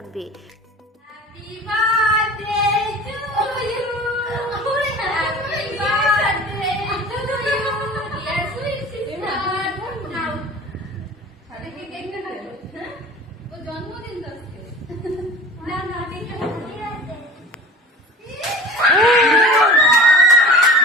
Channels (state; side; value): normal; both; correlation 0.40